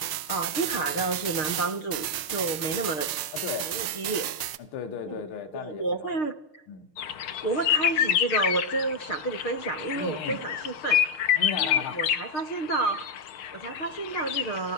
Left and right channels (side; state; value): right; late; 6.5 ms